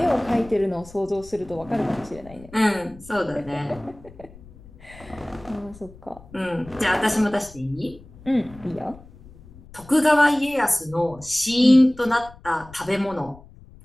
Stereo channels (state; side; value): noise; left; rumble, 21 dB below the sound